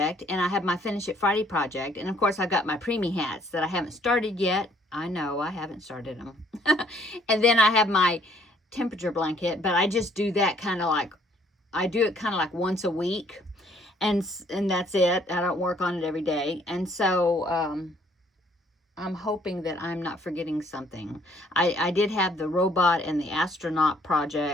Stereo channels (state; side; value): normal; both; correlation 0.63